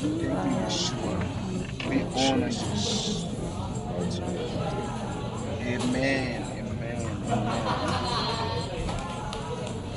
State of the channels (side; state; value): both; identical; correlation 1.00